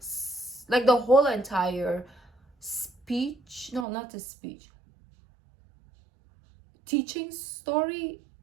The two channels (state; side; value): drops out; left; at 3.9 s